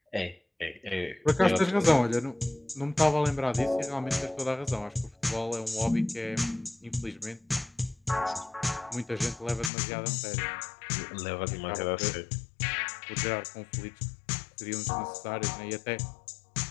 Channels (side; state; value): right; drops out; at 9.7 s